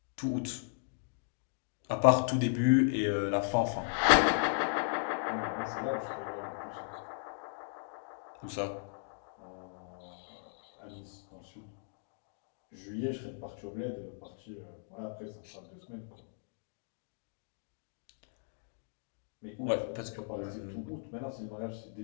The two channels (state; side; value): silent; right; digital silence